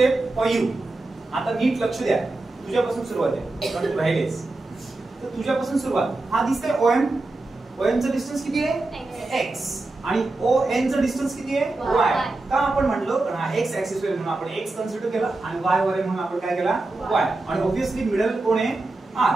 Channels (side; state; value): left; quieter; 3.1 dB